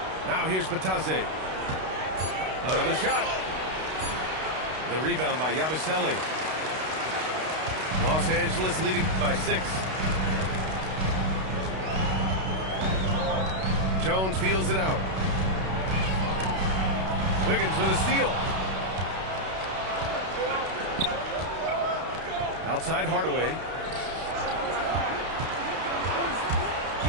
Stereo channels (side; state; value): left; late; 32 ms